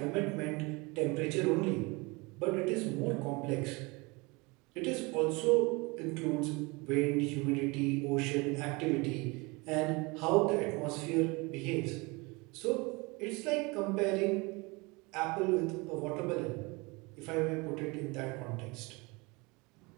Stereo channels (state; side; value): quieter; left; 26.2 dB